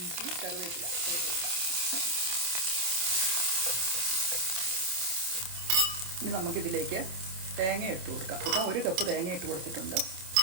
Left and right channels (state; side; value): late; left; 27 ms